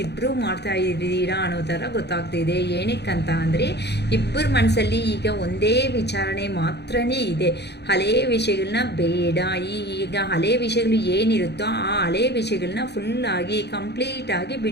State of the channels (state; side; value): late; right; 0.49 ms